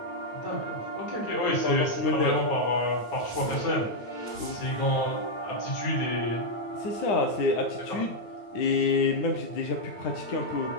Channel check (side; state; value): right; late; 9.0 ms